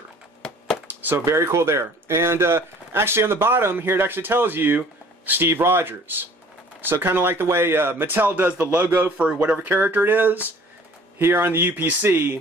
So very cool there. And actually on the bottom here it actually tells you Steve Rogers. So kind of like the way Mattel does the logo for whatever character it is. Here on the UPC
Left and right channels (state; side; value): normal; both; correlation 0.51